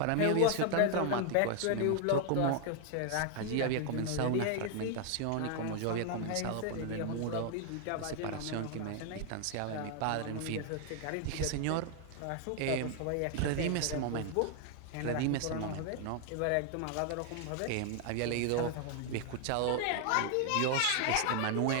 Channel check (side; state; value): both; different; correlation 0.00